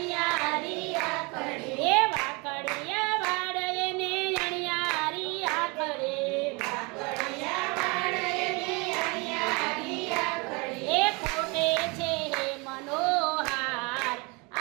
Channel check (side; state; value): left; quieter; 28.4 dB